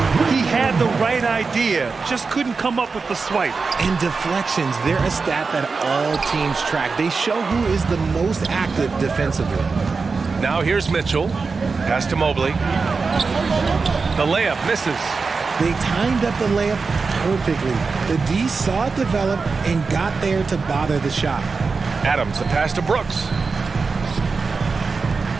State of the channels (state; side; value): quieter; left; 4.6 dB